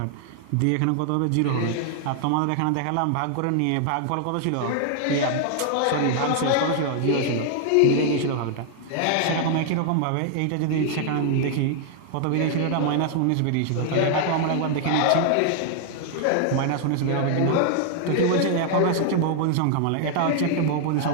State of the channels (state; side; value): different; both; correlation 0.00